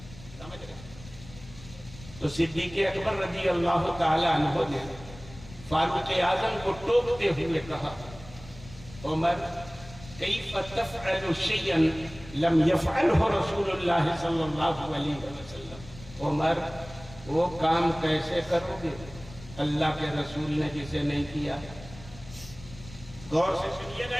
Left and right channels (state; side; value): noise; left; rumble, 17 dB below the sound